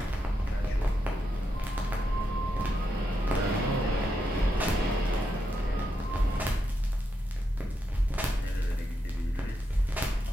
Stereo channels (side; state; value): both; normal; correlation 0.83